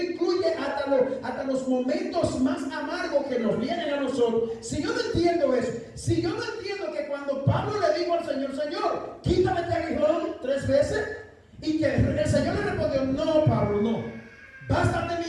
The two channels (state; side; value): identical; both; correlation 1.00